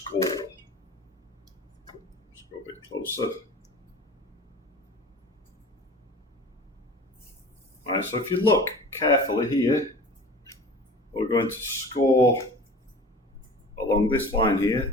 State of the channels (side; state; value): both; normal; correlation 0.39